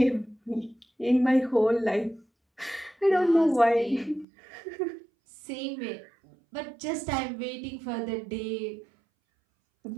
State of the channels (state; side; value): drops out; left; at 4.2 s